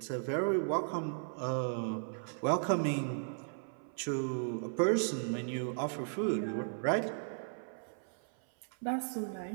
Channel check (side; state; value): left; silent; 54 dB below the other